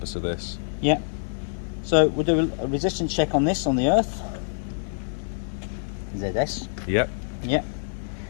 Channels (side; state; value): right; silent; 61 dB below the other